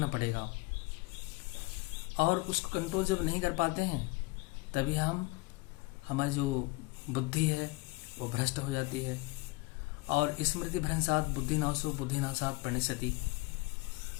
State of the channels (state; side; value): quieter; right; 23.9 dB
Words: पड़ेगा, और उसको कंट्रोल जब नहीं कर पाते हैं तभी हमारी जो बुद्धि है वो भ्रष्ट हो जाती है। और स्मृति भ्रंशात बुद्धिनाशो बुद्धिनाशात प्रणश्यति,